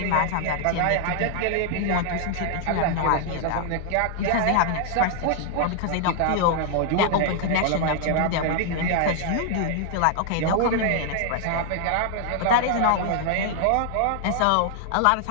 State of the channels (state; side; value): different; both; correlation 0.00